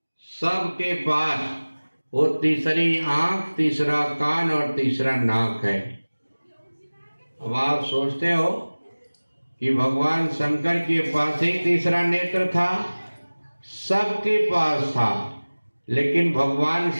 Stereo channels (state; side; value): inverted; both; correlation -1.00